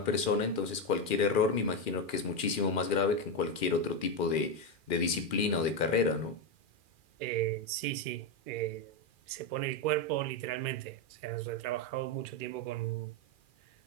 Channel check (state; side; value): late; right; 2.4 ms